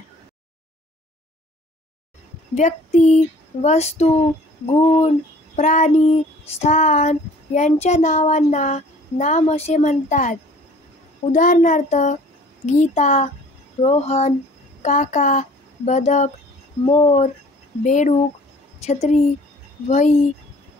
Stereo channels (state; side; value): normal; both; correlation 0.51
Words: व्यक्ती, वस्तू, गुण, प्राणी, स्थान यांच्या नावांना नाम असे म्हणतात. उदाहरणार्थ गीता, रोहन, काका, बदक, मोर, बेडूक, छत्री, वही,